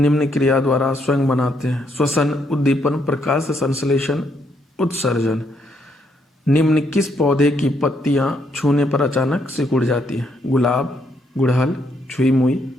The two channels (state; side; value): normal; both; correlation 0.74